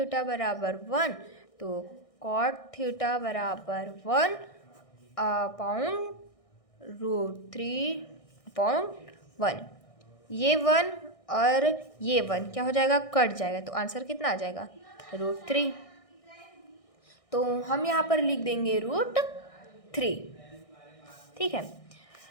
बराबर 1, तो cot थीटा बराबर 1/√3/1। ये 1 और ये 1 क्या हो जाएगा? कट जाएगा, तो आंसर कितना आ जाएगा? √3। तो हम यहाँ पर लिख देंगे √3, ठीक है।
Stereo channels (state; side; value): late; right; 1.6 ms